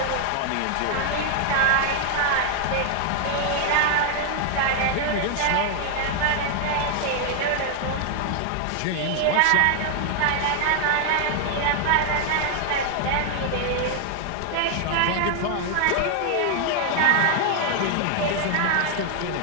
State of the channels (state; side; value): different; both; correlation 0.00